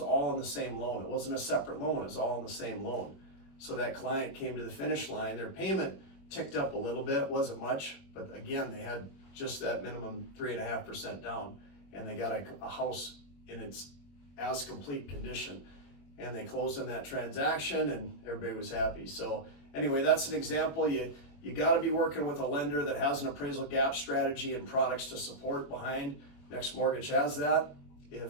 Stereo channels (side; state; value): right; late; 21 ms